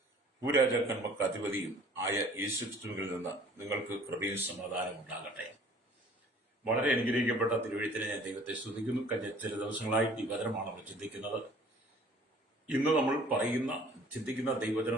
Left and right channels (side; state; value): both; normal; correlation 0.52